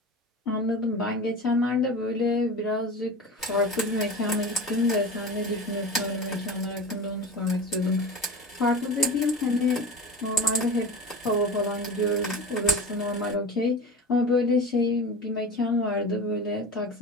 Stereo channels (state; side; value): normal; both; correlation 0.30